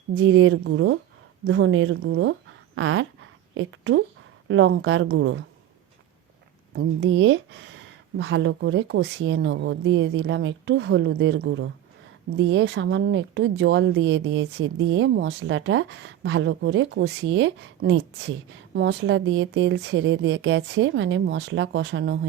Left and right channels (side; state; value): left; quieter; 11.7 dB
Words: জিরের গুঁড়ো, ধনের গুঁড়ো আর একটু লঙ্কার গুঁড়ো, দিয়ে ভালো করে কষিয়ে নেব। দিয়ে দিলাম একটু হলুদের গুঁড়ো, দিয়ে সামান্য একটু জল দিয়েছি, দিয়ে মশলাটা ভালো করে কষিয়ে নিচ্ছি। মশলা দিয়ে তেল ছেড়ে গেছে, মানে মশলা কষানো